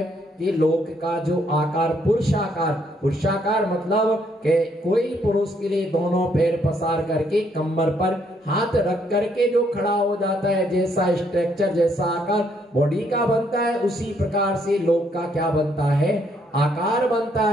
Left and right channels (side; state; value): both; normal; correlation 0.71